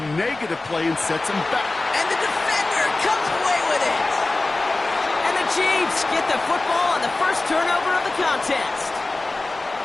negative play and sets them back. And the defender comes away with it. And the Chiefs get the football on the first turnover of the contest.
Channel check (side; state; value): right; quieter; 3.1 dB